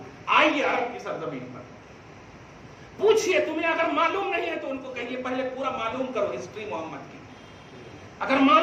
آئیے عرب کی سرزمین پر، پوچھئے، تمہیں اگر معلوم نہیں ہے تو ان کو کہیے پہلے پورا معلوم کرو ہسٹری محمد کی، اگر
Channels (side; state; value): both; identical; correlation 1.00